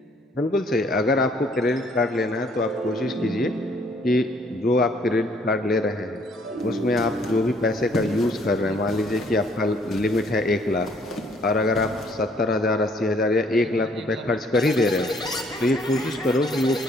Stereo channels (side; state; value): both; normal; correlation 0.63